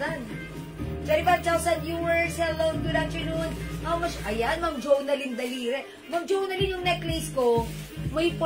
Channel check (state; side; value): identical; both; correlation 1.00